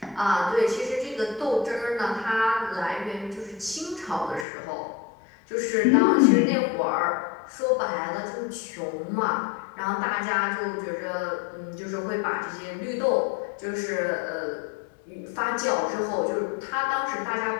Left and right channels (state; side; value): drops out; right; at 4.5 s